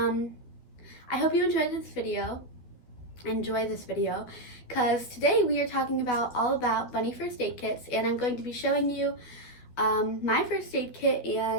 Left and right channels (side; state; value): right; late; 13 ms